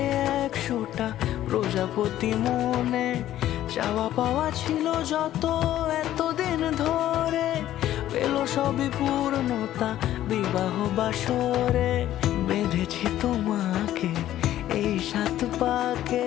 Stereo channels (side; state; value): right; quieter; 12.9 dB